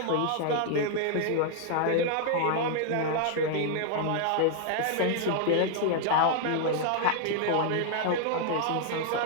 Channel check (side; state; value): both; different; correlation 0.00